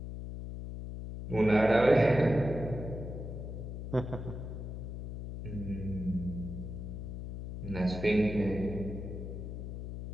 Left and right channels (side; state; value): left; noise; hum, 7 dB below the sound